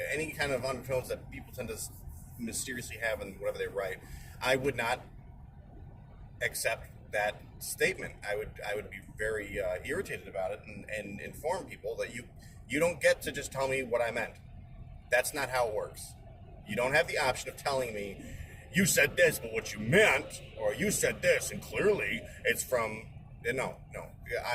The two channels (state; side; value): identical; both; correlation 1.00